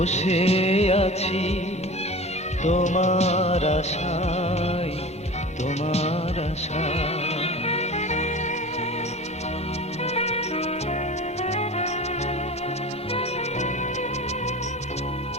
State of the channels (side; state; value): both; normal; correlation 0.35